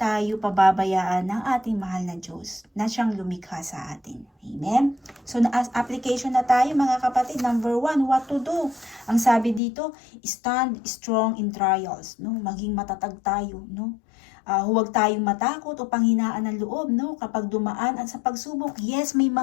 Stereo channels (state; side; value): drops out; right; at 9.6 s